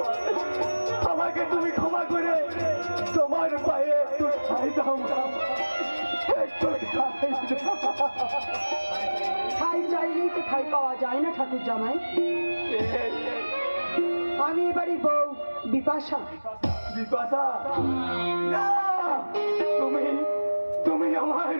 আমাকে তুমি ক্ষমা করে তোমার পায়ে একটু ঠাই দাও মা, একটু ঠাই দাও। ঠাই চাইলেই তো ঠাই পাওয়া যায় না ঠাকুর জামাই। আমি এবারই বউ বিপাশা। বিপাশা না, তুমি তুমি আমার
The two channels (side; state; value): both; inverted; correlation -1.00